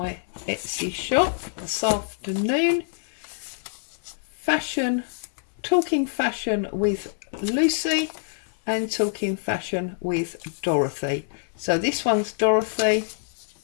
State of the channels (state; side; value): silent; right; 61 dB below the other